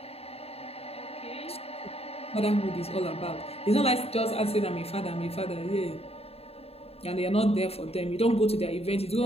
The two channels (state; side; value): late; right; 0.29 ms